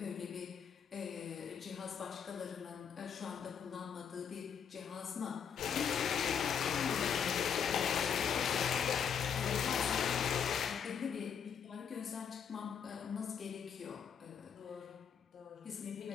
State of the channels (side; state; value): right; quieter; 7.4 dB